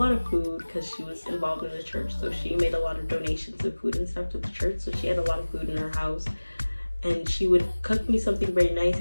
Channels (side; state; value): both; inverted; correlation -1.00